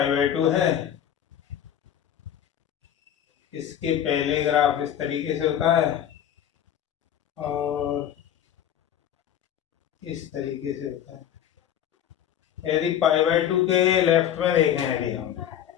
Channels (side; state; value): right; quieter; 10.2 dB